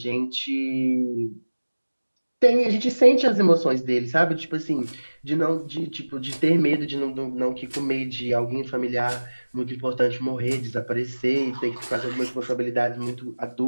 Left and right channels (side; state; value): both; inverted; correlation -1.00